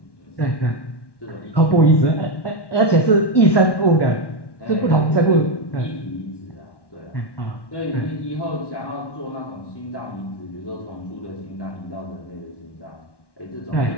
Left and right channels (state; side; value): late; right; 1.1 ms